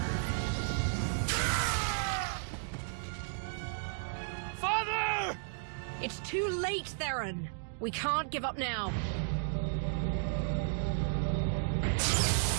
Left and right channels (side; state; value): left; silent; digital silence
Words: Father! It's too late, Theron. We can't give up now.